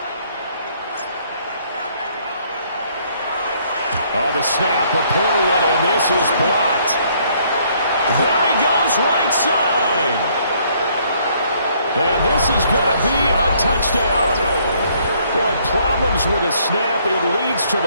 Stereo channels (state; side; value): inverted; both; correlation -0.65